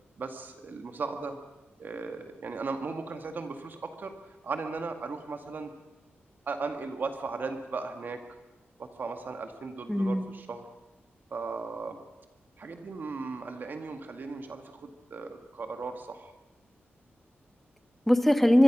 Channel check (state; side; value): normal; both; correlation 0.94